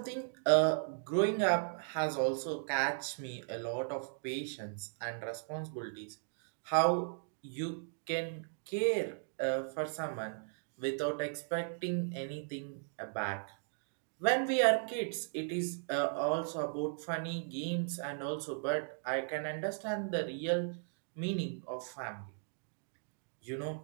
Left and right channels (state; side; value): silent; left; digital silence